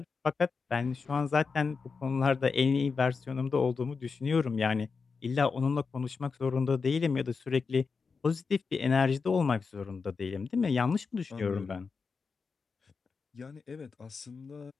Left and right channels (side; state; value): right; quieter; 5.0 dB